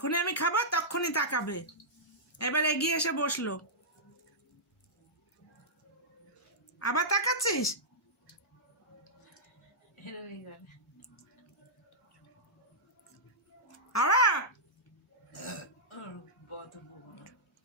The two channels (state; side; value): normal; both; correlation -0.14